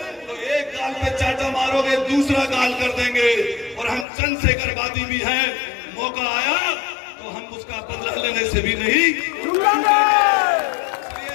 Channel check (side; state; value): right; drops out; at 4.0 s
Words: तो एक गाल पे चाटा मारोगे, दूसरा गाल कर देंगे, और हम चंद्रशेखरवादी भी हैं। मौका आया तो हम उसका बदला लेने से भी नहीं चूकेंगे। इसलिए